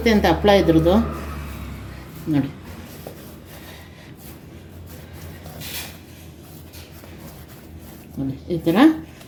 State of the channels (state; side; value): identical; both; correlation 1.00